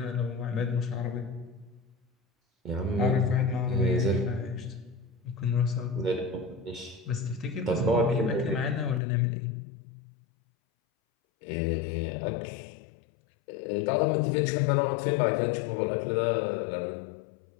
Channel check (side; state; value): right; drops out; at 9.0 s